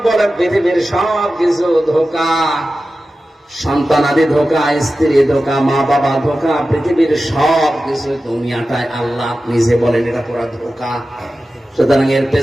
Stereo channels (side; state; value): both; normal; correlation 0.94